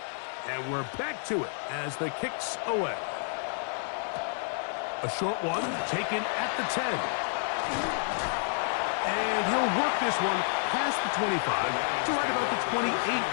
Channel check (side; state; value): right; silent; 58 dB below the other